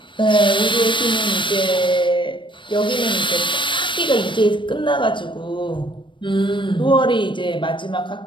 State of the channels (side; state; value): right; late; 0.24 ms